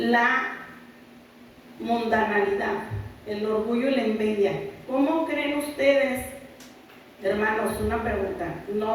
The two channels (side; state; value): both; identical; correlation 1.00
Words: mundanalidad, el orgullo y la envidia? ¿Cómo creen ustedes, hermanos? Una pregunta.